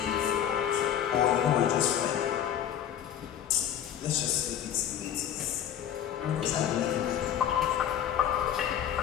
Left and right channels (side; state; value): right; quieter; 9.9 dB